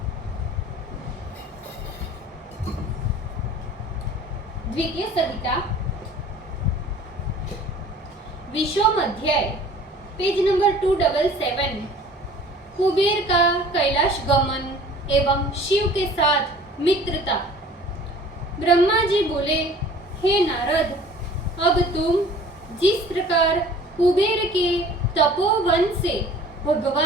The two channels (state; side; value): normal; both; correlation 0.48